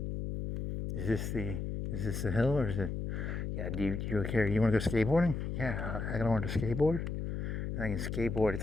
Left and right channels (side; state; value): left; noise; hum, 3 dB below the sound